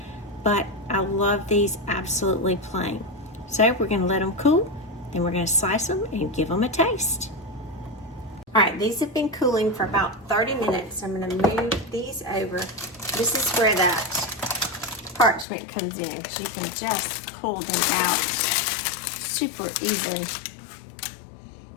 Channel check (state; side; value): drops out; right; at 15.5 s